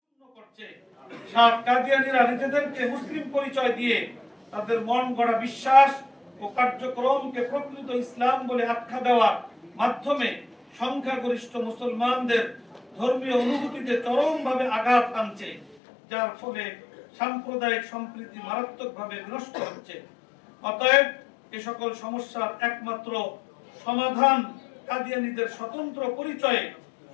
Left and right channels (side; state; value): right; drops out; at 15.8 s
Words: পূর্ণ করছে, সাত কাদিয়ানীরা নিজেদেরকে মুসলিম পরিচয় দিয়ে তাদের মন গড়া বিশ্বাস ও কার্যক্রমকে প্রকৃত ইসলাম বলে আখ্যা দেওয়ার মাধ্যমে সংখ্যাগরিষ্ঠ মুসলমানদের ধর্মীয় অনুভূতিতে চরমভাবে আঘাত আনছে, যার ফলে সাম্প্রদায়িক সম্প্রীতি মারাত্মকভাবে বিনষ্ট হচ্ছে। অতএব এ সকল সমস্যার একমাত্র সমাধান কাদিয়ানীদের স্বতন্ত্র পরিচয়ে